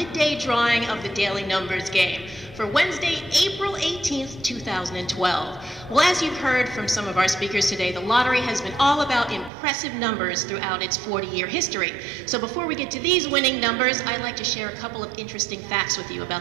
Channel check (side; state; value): left; drops out; at 9.5 s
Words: drawing of the Daily Numbers Game for Wednesday, April 18th, 2012. Well, as you've heard from some of our speakers today, the lottery has been all about impressive numbers throughout its 40-year history. So before we get to these winning numbers, I'd like to share a couple of interesting facts with you